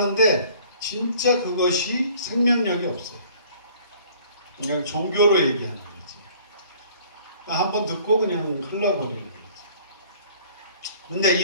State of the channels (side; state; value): both; inverted; correlation -0.53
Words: 진짜 그것이 생명력이 없어요. 그냥 종교로 얘기하는 거지. 한번 듣고 그냥 흘러버리는 거지. 근데